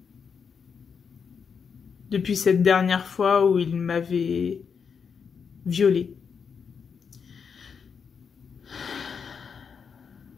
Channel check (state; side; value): quieter; right; 6.3 dB